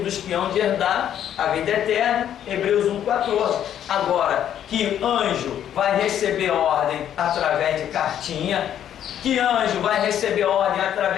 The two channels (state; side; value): quieter; right; 10.2 dB